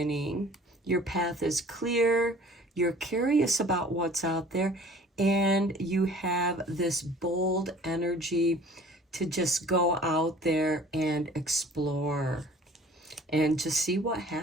Your path is clear, you're curious about what's out there, and you have this bold energy to just go out there and explore and just see what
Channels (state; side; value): normal; both; correlation 0.49